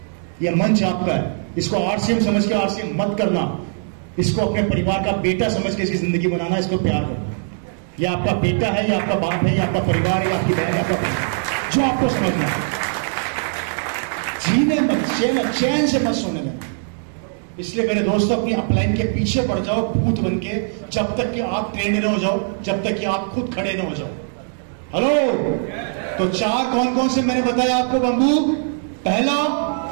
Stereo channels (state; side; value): silent; left; digital silence